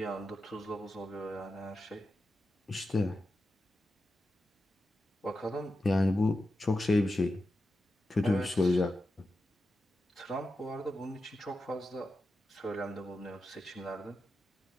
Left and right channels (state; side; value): normal; both; correlation 0.90